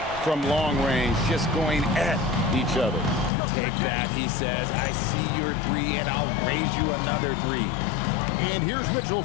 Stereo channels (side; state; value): right; drops out; at 3.3 s